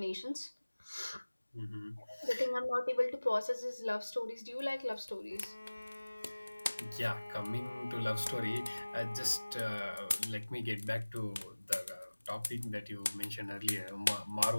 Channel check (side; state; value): both; inverted; correlation -1.00